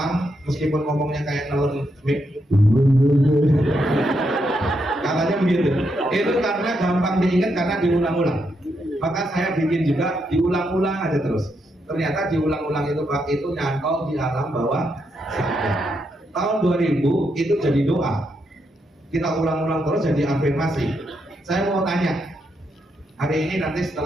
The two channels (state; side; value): normal; both; correlation 0.80